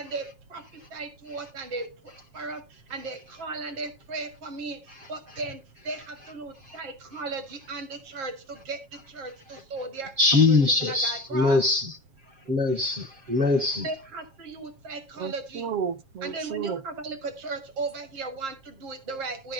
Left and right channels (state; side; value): late; left; 7.5 ms